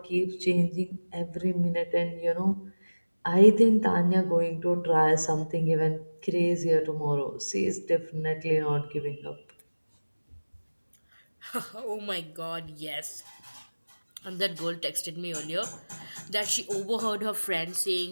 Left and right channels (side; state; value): both; inverted; correlation -1.00